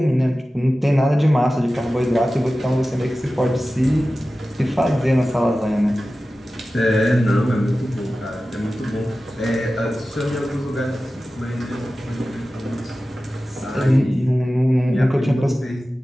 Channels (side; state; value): both; normal; correlation 0.95